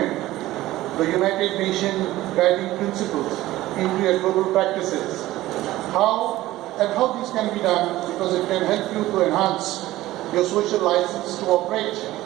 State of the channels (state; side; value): quieter; left; 16.3 dB